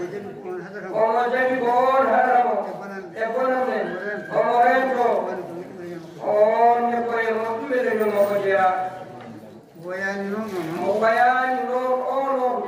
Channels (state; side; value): identical; both; correlation 1.00